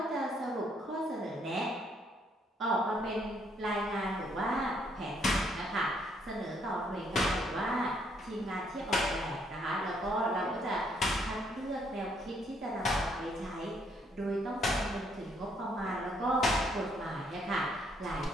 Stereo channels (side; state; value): both; normal; correlation 0.69